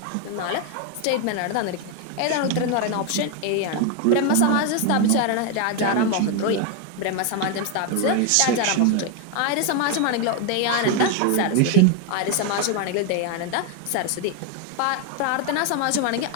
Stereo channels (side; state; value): both; different; correlation 0.01